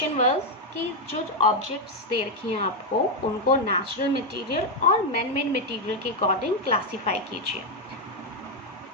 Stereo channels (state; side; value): normal; both; correlation 0.03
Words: was कि जो objects दे रखी हैं आपको उनको natural material और man made material के according classify कीजिए.